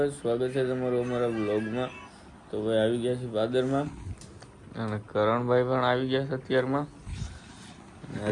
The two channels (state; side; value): identical; both; correlation 1.00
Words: સ્વાગત છે તમારું અમારા બ્લોગમાં. તો ભાઈ આવી ગયા છે પાદરમાં અને કરણભાઈ પણ આવી ગયા છે અત્યારમાં.